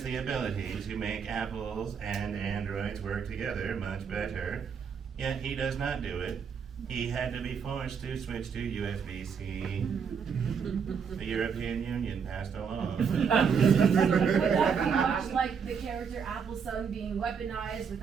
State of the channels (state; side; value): quieter; left; 6.5 dB